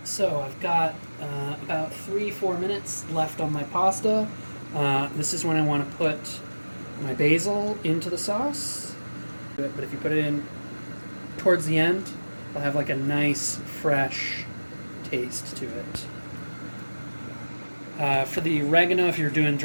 so I've got about 3-4 minutes left on my pasta. This is when I want to put my basil into the sauce. But if you put it in towards the end, it'll have like a nice, fresh taste to it. For the oregano, if you're doing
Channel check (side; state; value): both; inverted; correlation -1.00